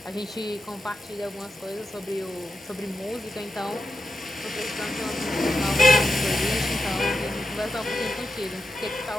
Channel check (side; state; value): both; normal; correlation 0.89